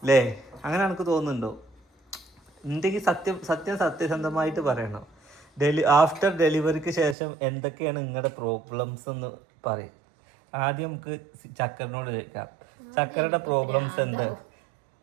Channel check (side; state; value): left; drops out; at 7.2 s